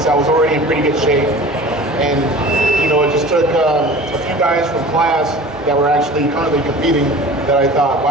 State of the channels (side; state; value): both; normal; correlation 0.40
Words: I was already in pretty good shape. And, it just took a few guys from class that were actually currently competing that I thought,